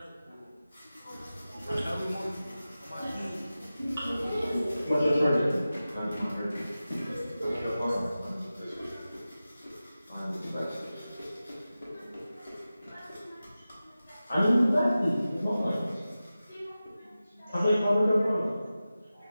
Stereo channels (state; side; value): inverted; both; correlation -0.95